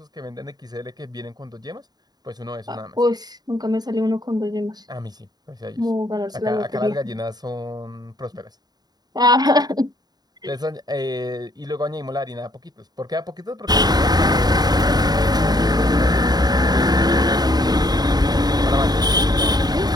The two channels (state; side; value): late; left; 0.19 ms